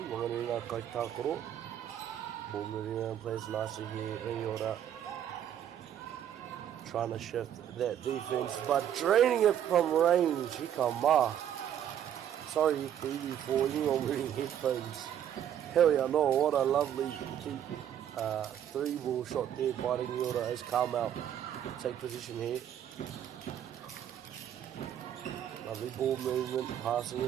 Kaitakoro. Ball moving around, plays nicely here. Rangiora trying to shift that defense, but draining it from range. Hikama. Sorry, TV for anyone wearing headphones. Hell yeah, no, what a lovely cheap 3-ball shot there by Rangiora as Carmel take position here. Lovely ball movement, passing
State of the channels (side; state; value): left; quieter; 10.1 dB